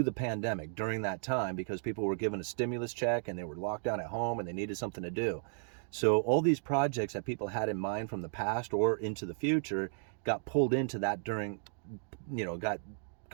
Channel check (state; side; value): silent; left; digital silence